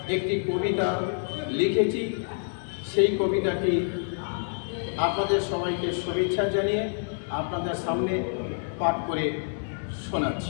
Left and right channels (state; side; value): silent; right; 60 dB below the other